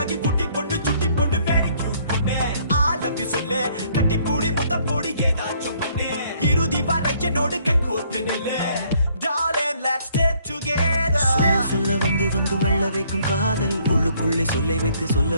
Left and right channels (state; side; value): inverted; both; correlation -0.64